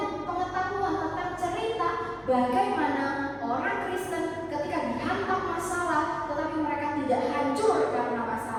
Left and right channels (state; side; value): identical; both; correlation 1.00